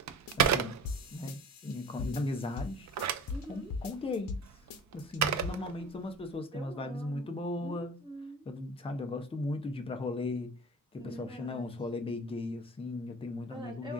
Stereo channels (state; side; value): normal; both; correlation 0.40